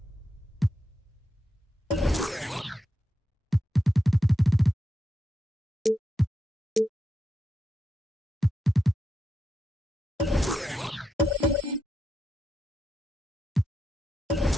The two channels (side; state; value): both; normal; correlation 0.86